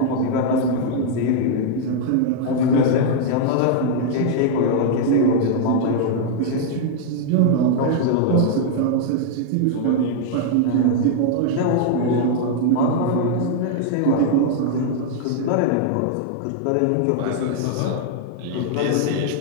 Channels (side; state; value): both; different; correlation -0.01